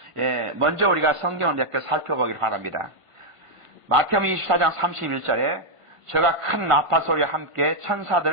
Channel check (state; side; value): late; left; 1.5 ms